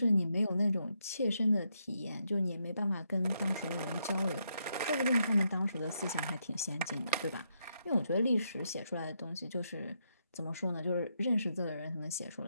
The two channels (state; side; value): inverted; both; correlation -0.80